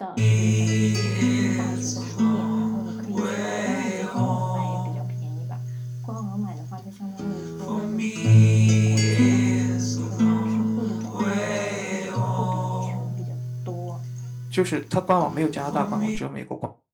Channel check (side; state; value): both; identical; correlation 1.00